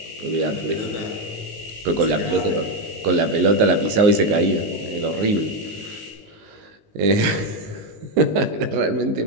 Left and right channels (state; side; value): late; left; 19 ms